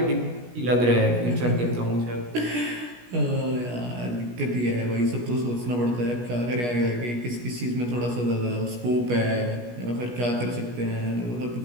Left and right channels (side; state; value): left; late; 17 ms